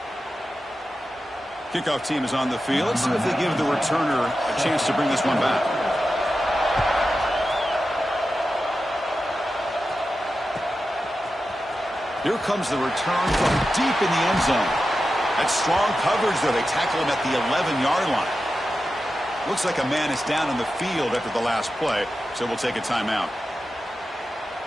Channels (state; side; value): normal; both; correlation 0.91